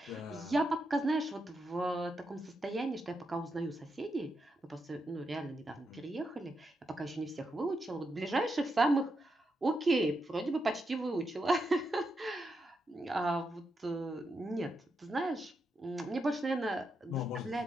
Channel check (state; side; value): normal; both; correlation 0.84